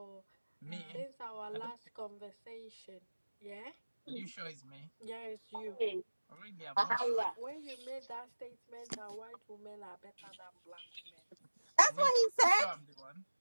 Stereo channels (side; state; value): both; inverted; correlation -1.00